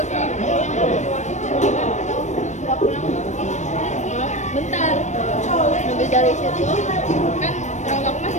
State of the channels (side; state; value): right; late; 0.34 ms